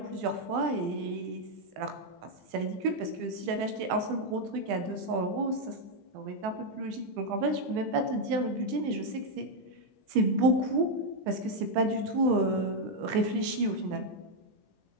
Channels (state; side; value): late; left; 20 ms